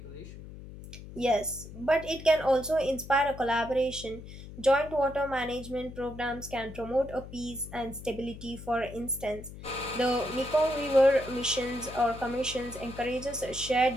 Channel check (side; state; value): left; noise; hum, 14 dB below the sound